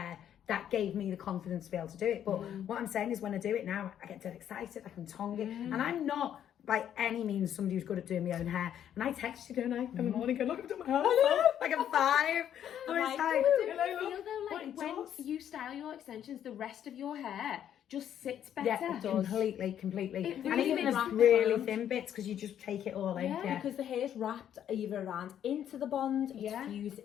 that gave me the confidence to be able to do it. But what I'm saying is, when I do it now, I get dead excited, I can tongue it. And I'm not by any means somebody who's good at doing my own hair. And I text you, don't I, in the morning, go, look, I've done my hair. Like I'm 5. When you style your extensions, the rest of your hair just sits better. Completely. It And even the really thin bits, because you just take it all in. Because the hair's wrapped either around into the bond, it's fused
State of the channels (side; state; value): right; quieter; 10.0 dB